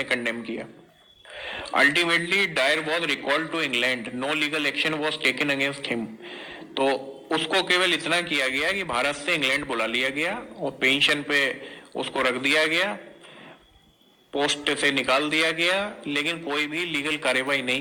कंडेम किया। Ultimately Dyer was recalled to England, no legal action was taken against him. तो उसको केवल इतना किया गया कि भारत से इंग्लैंड बुला लिया गया और पेंशन पे उसको रख दिया गया, पोस्ट से निकाल दिया गया, लेकिन कोई भी लीगल कार्यवाही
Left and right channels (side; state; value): both; identical; correlation 1.00